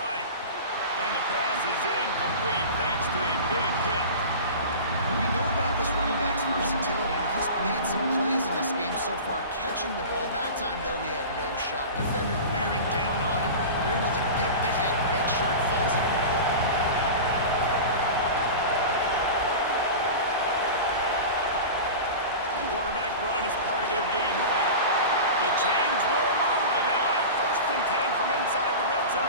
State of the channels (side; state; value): both; inverted; correlation -0.31